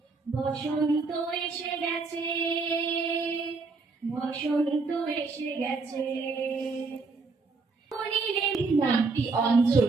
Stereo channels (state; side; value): quieter; left; 4.1 dB